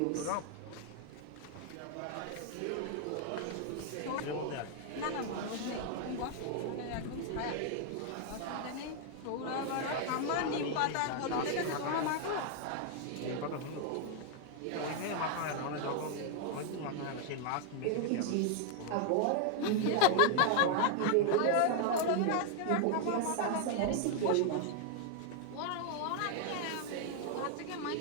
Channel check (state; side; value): different; both; correlation 0.00